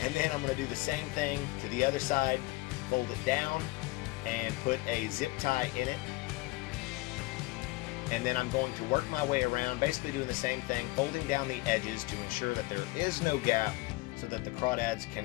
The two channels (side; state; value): right; quieter; 21.7 dB